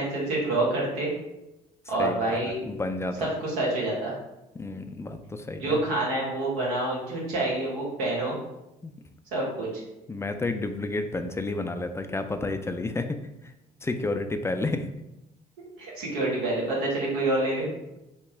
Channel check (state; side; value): normal; both; correlation 0.43